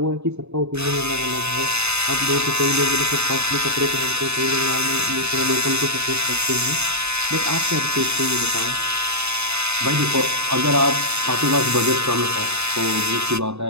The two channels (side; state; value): left; late; 0.80 ms